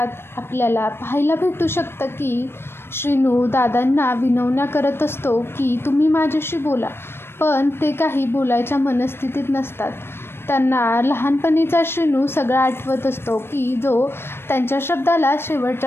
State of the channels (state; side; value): late; right; 0.12 ms